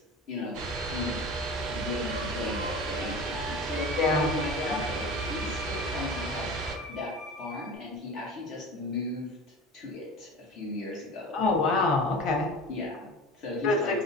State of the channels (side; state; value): both; normal; correlation 0.34